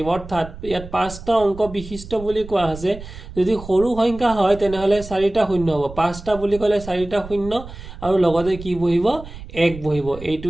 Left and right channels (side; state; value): right; noise; rumble, 14 dB below the sound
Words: অৰ্থাৎ ইয়াত পাঁচটা অংক বিশিষ্ট বুলি কোৱা আছে যদি সৰু সংখ্যা হয় তেনেহলে চাৰিটা শূন্য হ'ব পাঁচটা বুলি ক'লে চাৰিটা শূন্য আৰু লগতে কি বহিব এক বহিব